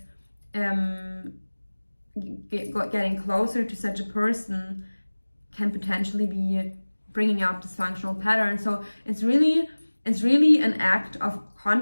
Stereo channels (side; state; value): both; inverted; correlation -1.00